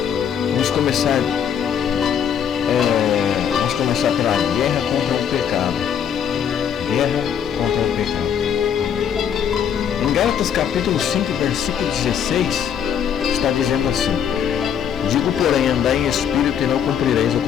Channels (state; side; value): quieter; right; 8.3 dB